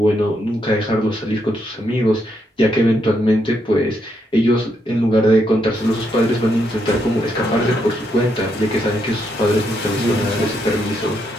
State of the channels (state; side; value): normal; both; correlation 0.78